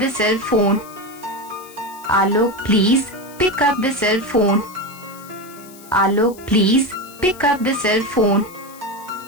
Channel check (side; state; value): left; noise; hiss, 21 dB below the sound